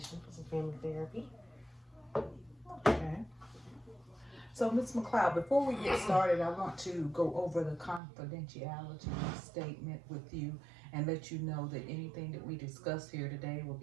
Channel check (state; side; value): drops out; left; at 8.0 s